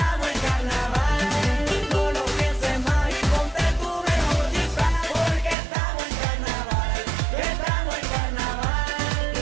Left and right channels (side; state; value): left; drops out; at 5.6 s